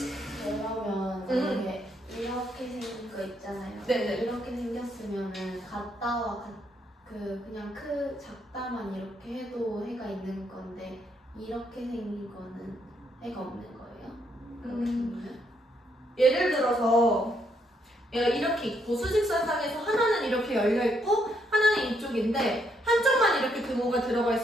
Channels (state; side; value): normal; both; correlation 0.74